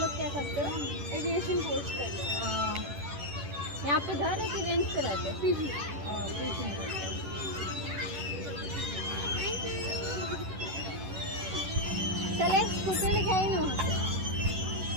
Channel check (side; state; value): left; late; 11 ms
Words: क्या करते हो? एविएशन कोर्स करते हो। यहाँ पे घर है कि रेंट पे रहते हो? पीजी। चले स्कूटर लिखाई ना वहाँ पे।